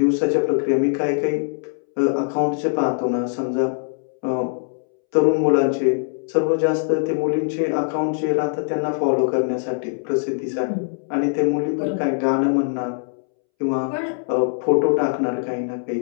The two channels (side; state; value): right; silent; 64 dB below the other